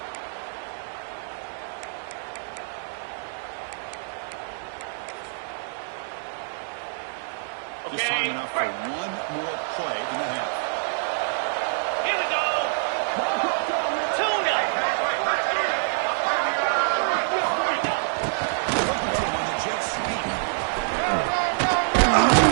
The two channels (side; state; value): left; silent; digital silence